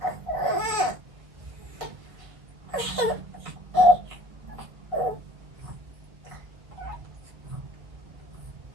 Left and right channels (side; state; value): left; late; 1.5 ms